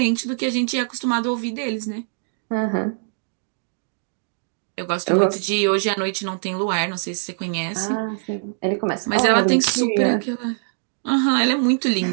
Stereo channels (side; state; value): left; silent; digital silence